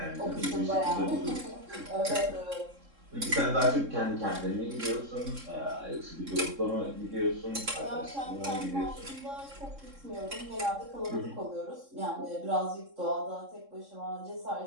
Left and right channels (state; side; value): late; left; 3.7 ms